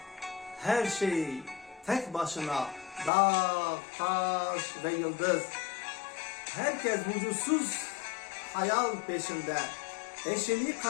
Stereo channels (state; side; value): drops out; right; at 3.1 s